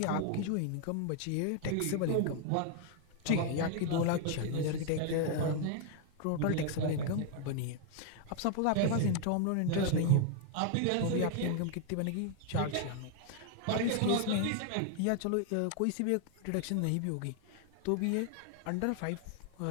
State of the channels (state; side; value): different; both; correlation 0.00